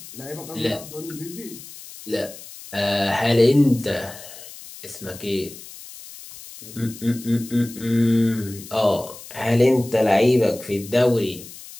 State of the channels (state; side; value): noise; left; hiss, 16 dB below the sound